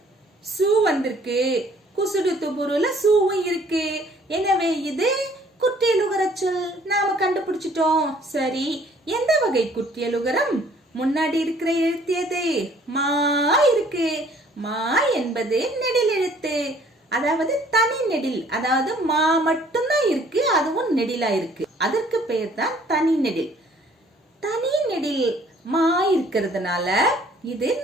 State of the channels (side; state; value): both; normal; correlation 0.58